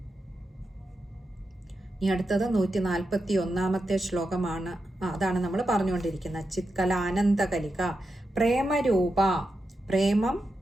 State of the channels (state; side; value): normal; both; correlation 0.88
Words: ഇനി അടുത്തത് 141 ശ്ലോകമാണ്. അതാണ് നമ്മൾ പറഞ്ഞുകൊണ്ടിരിക്കുന്നത്. ചിത്കല ആനന്ദകലിക. പ്രേമരൂപ, പ്രേമം